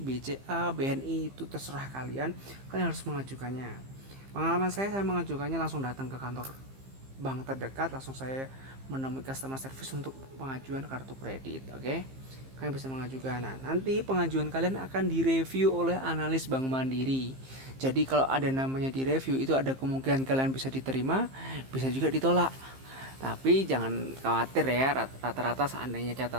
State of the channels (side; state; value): left; late; 15 ms